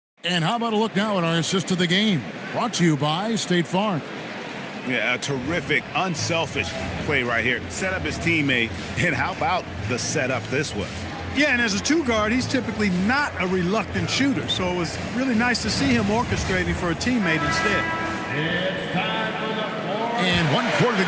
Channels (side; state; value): both; identical; correlation 1.00